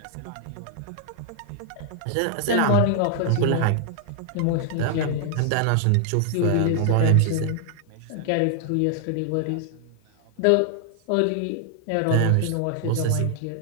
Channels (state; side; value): different; both; correlation 0.00